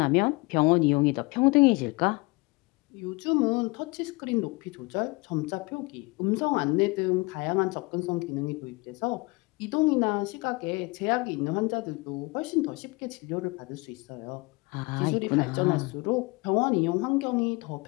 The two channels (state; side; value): quieter; right; 25.8 dB